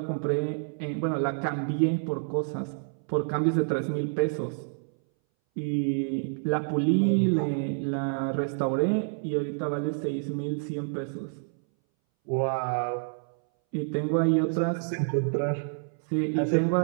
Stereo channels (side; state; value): left; silent; 59 dB below the other